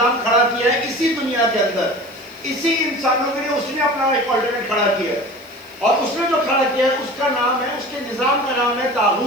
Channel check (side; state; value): left; noise; hiss, 26 dB below the sound